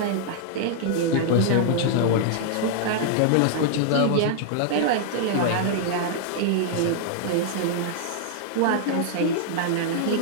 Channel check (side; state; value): both; different; correlation -0.01